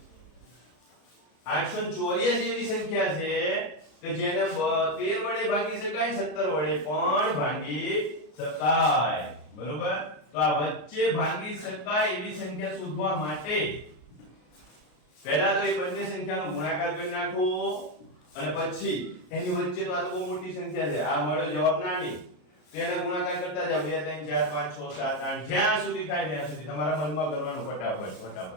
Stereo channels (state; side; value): late; right; 33 ms